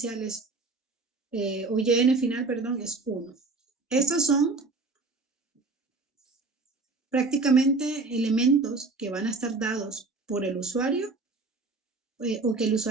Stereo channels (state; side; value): quieter; left; 3.7 dB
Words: es, o Yn final, perdón, es 1. Estos son prácticamente elementos que van a estar dados por el usuario o que el